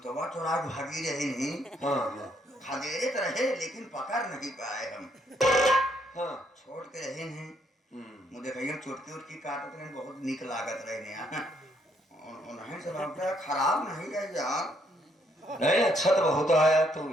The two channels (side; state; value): both; normal; correlation 0.71